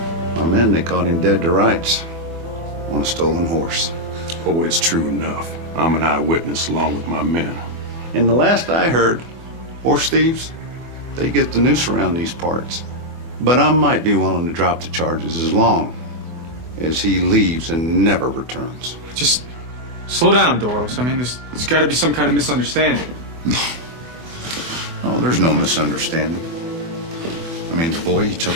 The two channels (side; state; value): left; late; 24 ms